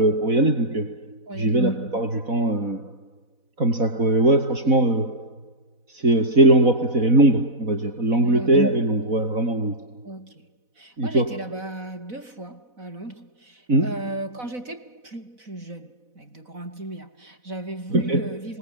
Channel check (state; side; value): late; left; 4.0 ms